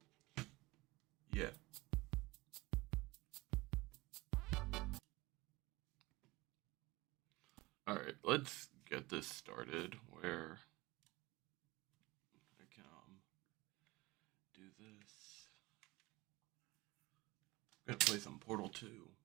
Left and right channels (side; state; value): left; quieter; 21.6 dB